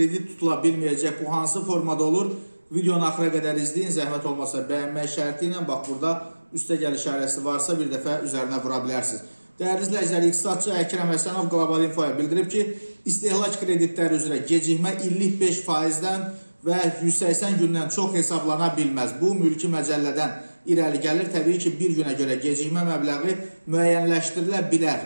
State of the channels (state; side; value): inverted; both; correlation -1.00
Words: tutula bilməyəcək. Bu hansı formada olur? Videonu axıra qədər izləyin. Zəhmət olmasa bəyənmək şərti ilə bax burada üstə gəl işarəsi varsa bir dəfə üzərinə vura bilərsiniz. Değerli izləyicilər, iqtisadçı Əkrəm Həsənov Qlobal Infoya bildirib ki, istehlak kreditləri üzrə gecikmə illik 5%-dən və 180 gündən çox hesablana bilməz. Bu mülki məcəllədən irəli gəlir. Təbii ki, bir günə görə gecikmə məbləği müəyyənləşdirilə